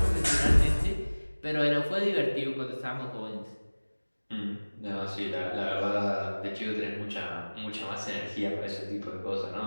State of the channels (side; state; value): both; inverted; correlation -1.00